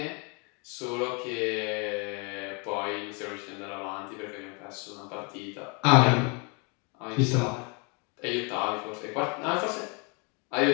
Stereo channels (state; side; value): quieter; right; 32.9 dB